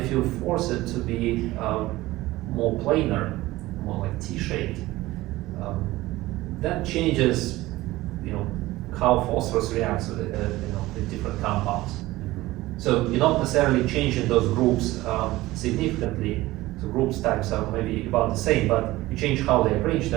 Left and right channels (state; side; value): quieter; left; 18.1 dB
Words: you force it to be more planar, more like T-shaped, that changes, how phosphorus reacts with different compounds. So you're not necessarily changing those groups significantly. So groups types are maybe about the same, but you change how they arranged